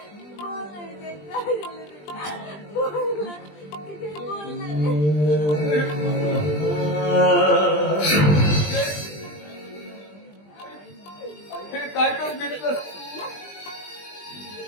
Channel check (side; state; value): right; late; 20 ms